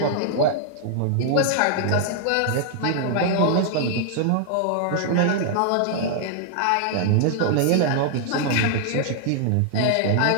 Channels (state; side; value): different; both; correlation -0.01